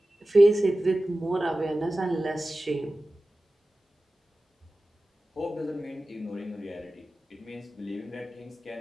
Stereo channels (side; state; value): both; normal; correlation 0.96